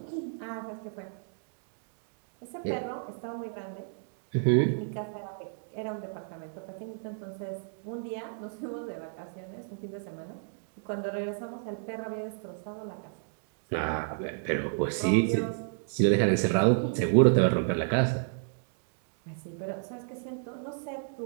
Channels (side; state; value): left; silent; digital silence